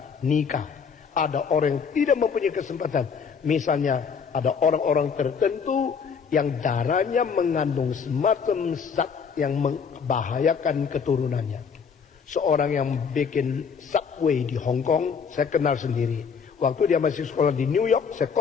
nikah, ada orang yang tidak mempunyai kesempatan. Misalnya ada orang-orang tertentu yang darahnya mengandung semacam zat yang membahayakan keturunannya. Seorang yang bikin subway di Hong Kong, saya kenal sendiri. Waktu dia masih sekolah di New York, saya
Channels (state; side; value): quieter; right; 6.2 dB